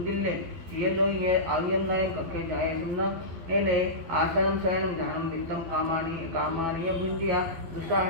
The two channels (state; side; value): late; left; 12 ms